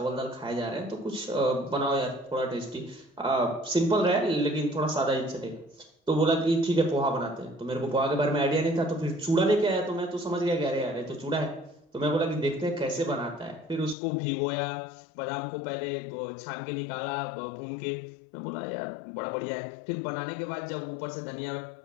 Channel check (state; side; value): drops out; right; at 14.0 s